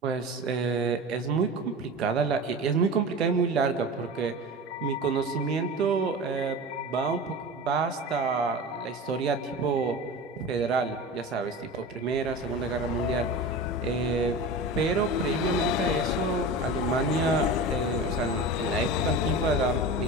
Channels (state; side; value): normal; both; correlation 0.31